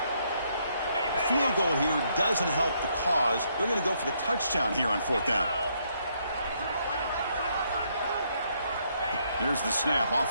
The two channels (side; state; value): both; inverted; correlation -0.73